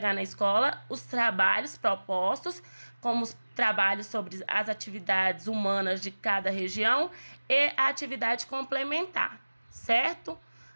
na escola os trabalhos propostos, como os trabalhos sobre as atividades humanas de cada região e a atividade complementar, certo?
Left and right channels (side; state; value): both; inverted; correlation -1.00